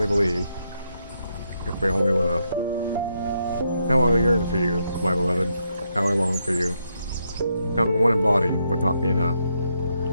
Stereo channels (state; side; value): inverted; both; correlation -0.79